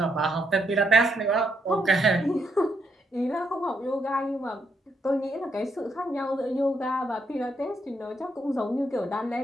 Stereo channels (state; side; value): normal; both; correlation 0.77